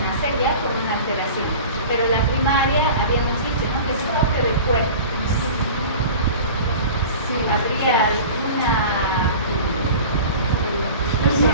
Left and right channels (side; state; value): both; inverted; correlation -0.38